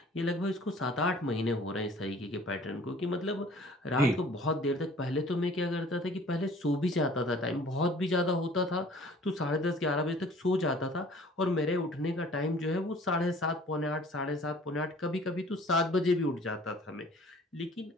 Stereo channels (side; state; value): both; normal; correlation 0.51